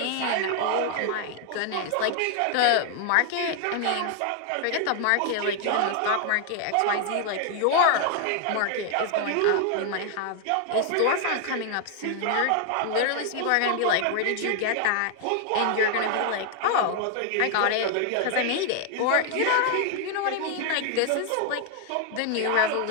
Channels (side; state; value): both; different; correlation 0.00